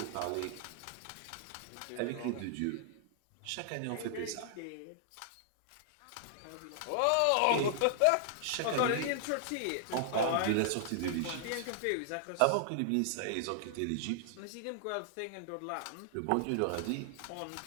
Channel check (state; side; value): different; both; correlation -0.01